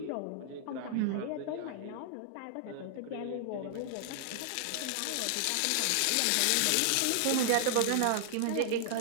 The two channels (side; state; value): both; different; correlation 0.00